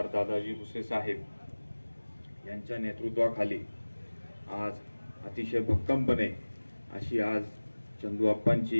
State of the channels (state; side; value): inverted; both; correlation -1.00